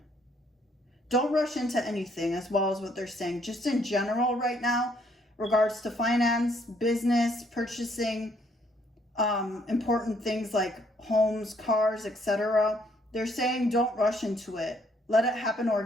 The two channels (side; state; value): both; normal; correlation 0.68